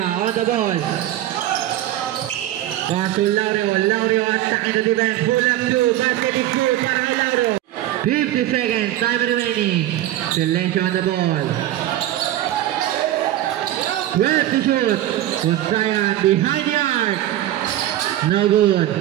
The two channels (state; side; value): quieter; left; 13.6 dB